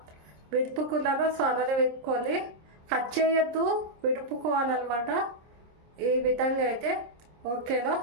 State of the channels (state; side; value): late; left; 26 ms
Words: విడుపుకున్నానో సో అలానే విడుపుకోవాలి. కట్ చేయొద్దు, విడుపుకోవాలన్నమాట ఈ విధంగా అయితే. ఓకేనా?